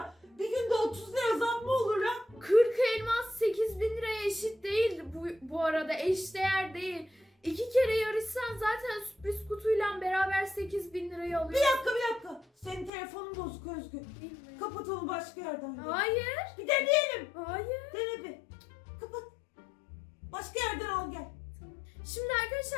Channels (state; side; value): drops out; right; at 12.9 s